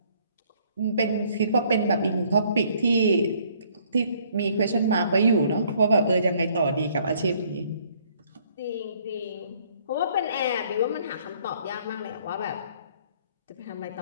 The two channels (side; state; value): both; inverted; correlation -0.63